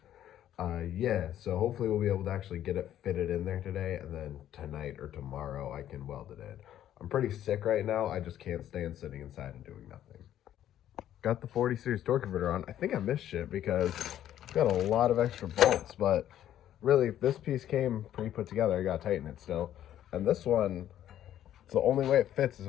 Yeah, so hopefully we'll be able to actually get it fitted in there today, and then tonight or tomorrow I can weld it in. I'm pretty sick right now. I just can't stand sitting inside and doing nothing. Got the 40 series torque converter on. I think I missed shit because I've got a lot of extra bolts, but really this piece came pretty put together. I gotta tighten it still. And this one, it's the only way it fits is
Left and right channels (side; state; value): right; quieter; 11.5 dB